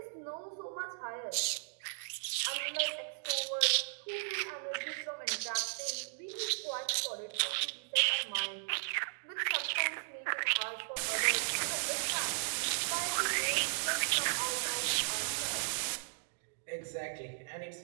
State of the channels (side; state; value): left; silent; digital silence